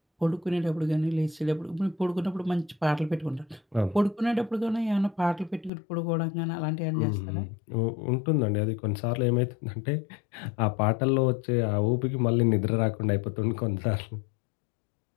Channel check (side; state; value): right; drops out; at 5.7 s